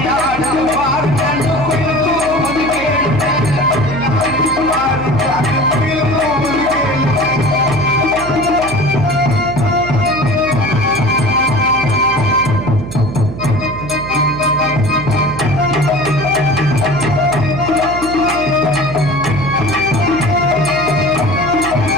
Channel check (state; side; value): noise; right; hum, 10 dB below the sound